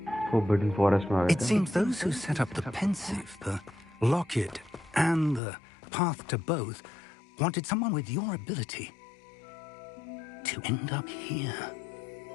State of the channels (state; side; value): drops out; right; at 5.4 s